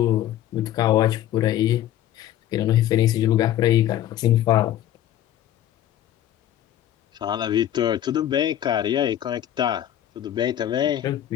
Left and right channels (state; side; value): quieter; right; 12.0 dB